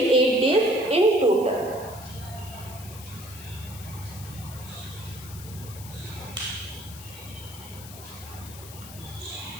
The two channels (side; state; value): left; noise; hiss, 15 dB below the sound